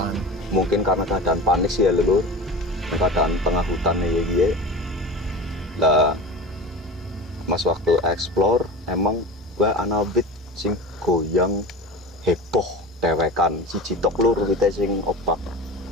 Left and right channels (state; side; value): normal; both; correlation 0.32